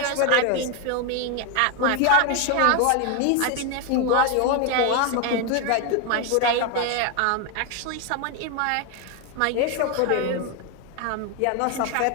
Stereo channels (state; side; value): different; both; correlation 0.01